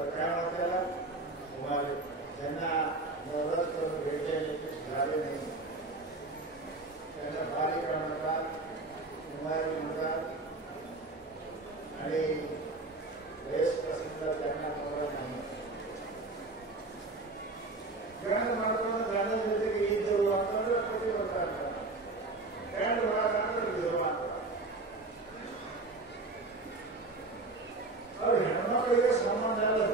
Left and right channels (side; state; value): left; quieter; 3.2 dB